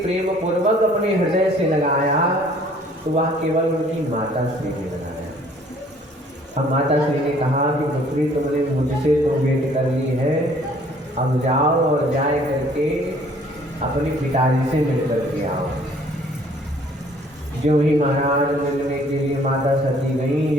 प्रेम पूर्वक अपने हृदय से लगाया तो वह केवल उनकी माता श्री ने लगाया। अब माता श्री ने कहा कि पुत्री तुमने मुझसे तो भेंट कर ली है, अब जाओ और जाए करके अपने पिताजी से मिल करके आओ। जो ही महाराज मिलने के लिए माता सती गई,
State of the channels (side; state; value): both; normal; correlation 0.57